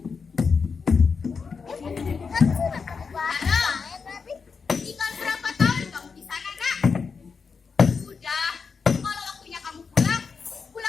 Halo. Tinggal berapa tahun kamu di sana, Nak? Sudah. Kalau waktunya kamu pulang,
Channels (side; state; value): right; quieter; 5.4 dB